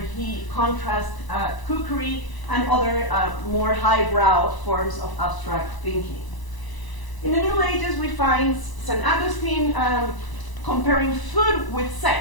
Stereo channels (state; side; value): late; right; 1.0 ms